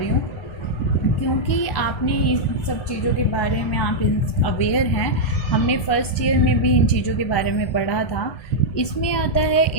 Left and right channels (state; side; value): late; right; 1.2 ms